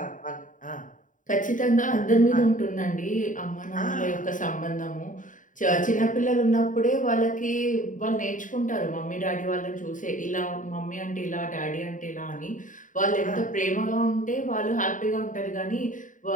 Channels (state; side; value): late; right; 0.38 ms